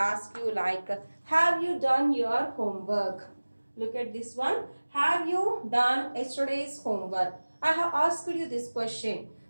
you like, have you done your homework? Look at this one. Have you done yesterday's homework? I have asked you this question.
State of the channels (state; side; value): inverted; both; correlation -1.00